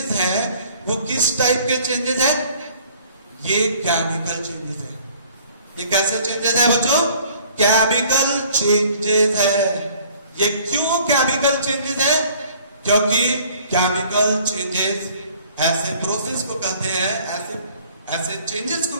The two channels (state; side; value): inverted; both; correlation -0.54